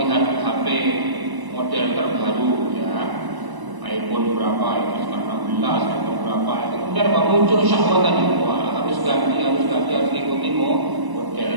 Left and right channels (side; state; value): left; late; 1.0 ms